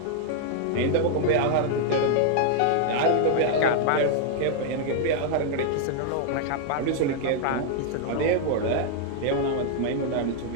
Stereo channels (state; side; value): different; both; correlation 0.00